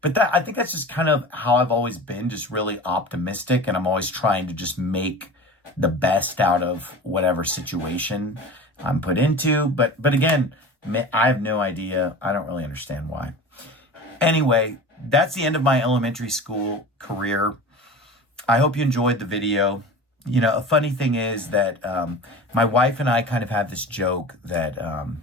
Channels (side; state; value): both; normal; correlation 0.34